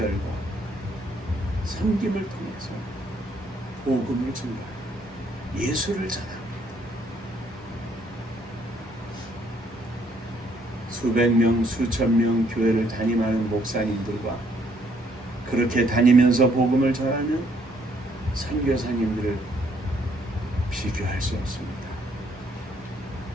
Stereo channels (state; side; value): normal; both; correlation 0.68